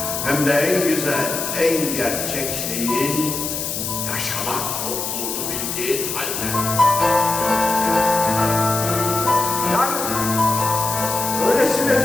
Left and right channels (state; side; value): noise; left; hiss, 3 dB below the sound